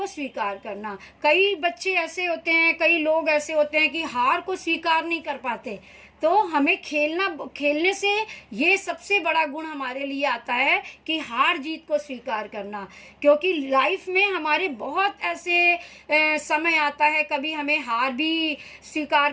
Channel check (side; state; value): both; identical; correlation 1.00